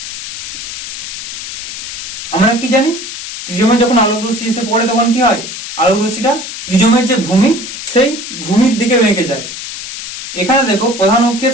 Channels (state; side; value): noise; left; hiss, 8 dB below the sound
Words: আমরা কি জানি, প্রিজমে যখন আলোক রশ্মি এসে পড়ে তখন কি হয়, আলোক রশ্মিটা প্রিজমের যে ভূমি সেই ভূমির দিকে বেঁকে যায়। এখানে দেখো প্রধান